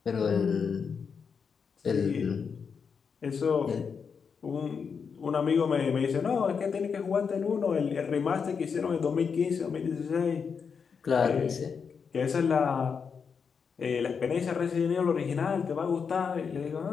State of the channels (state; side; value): quieter; right; 6.1 dB